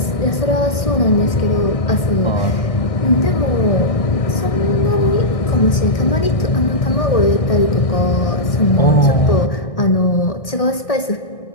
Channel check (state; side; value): late; right; 1.6 ms